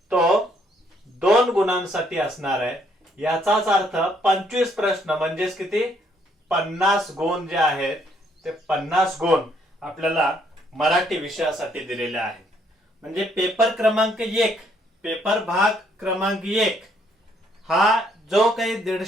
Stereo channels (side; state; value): both; normal; correlation 0.68